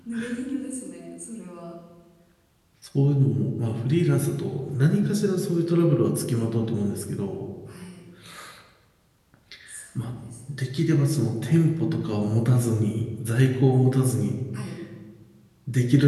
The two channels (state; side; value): identical; both; correlation 1.00